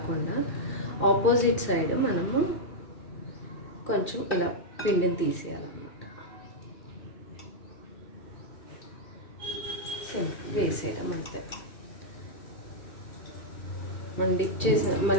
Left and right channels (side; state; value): right; late; 2.3 ms